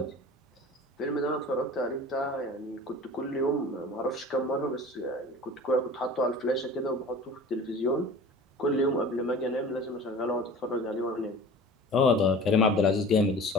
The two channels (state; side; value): normal; both; correlation 0.40